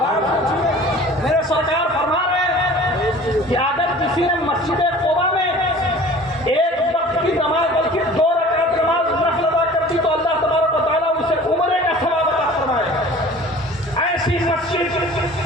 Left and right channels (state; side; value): normal; both; correlation 0.45